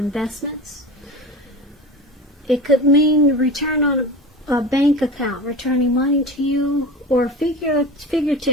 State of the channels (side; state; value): both; normal; correlation 0.31